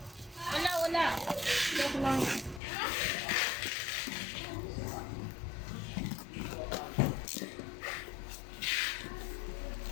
Wala. Joke lang.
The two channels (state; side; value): drops out; right; at 2.6 s